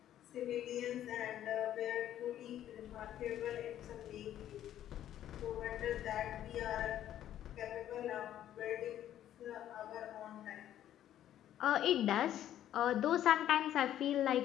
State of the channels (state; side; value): quieter; right; 11.6 dB